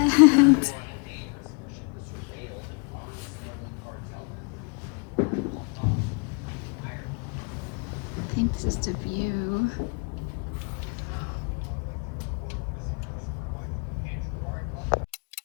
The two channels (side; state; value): right; quieter; 33.9 dB